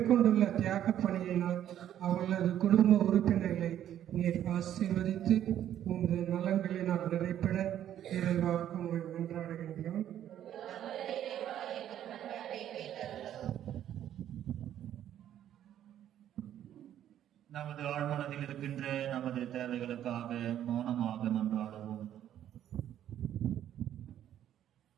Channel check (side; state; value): left; quieter; 11.0 dB